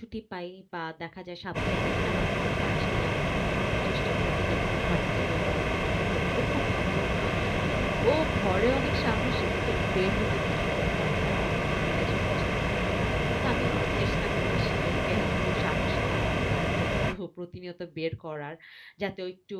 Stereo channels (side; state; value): both; identical; correlation 1.00